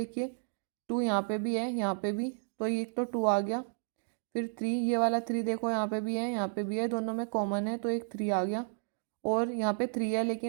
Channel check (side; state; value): left; silent; digital silence